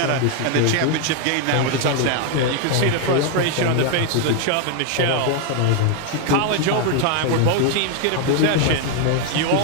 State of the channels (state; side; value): different; both; correlation 0.01